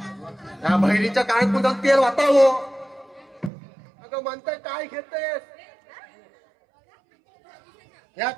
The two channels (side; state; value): left; drops out; at 3.5 s